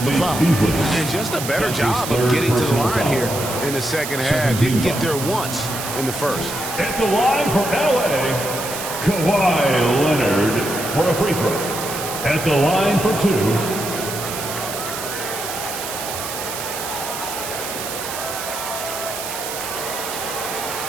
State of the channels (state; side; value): noise; right; hiss, 7 dB below the sound